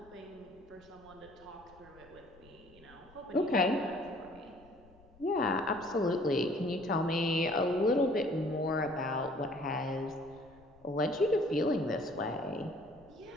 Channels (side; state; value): left; noise; rumble, 26 dB below the sound